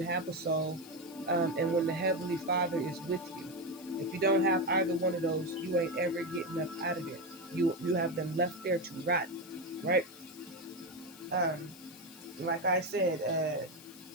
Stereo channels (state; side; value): noise; left; hiss, 19 dB below the sound